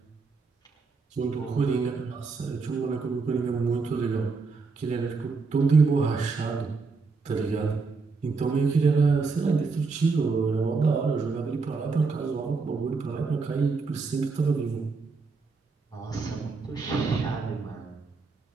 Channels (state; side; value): quieter; left; 4.4 dB